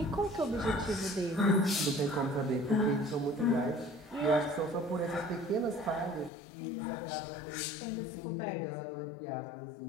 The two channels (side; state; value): right; drops out; at 6.3 s